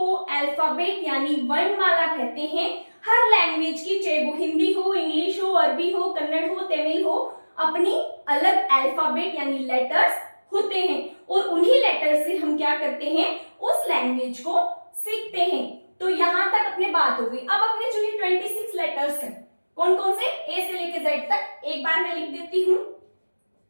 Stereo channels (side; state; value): both; inverted; correlation -1.00